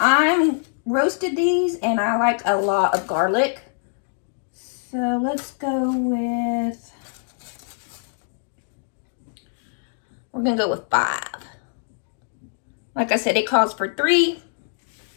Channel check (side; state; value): right; silent; digital silence